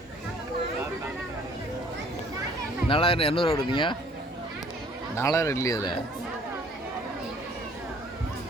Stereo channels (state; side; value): normal; both; correlation 0.57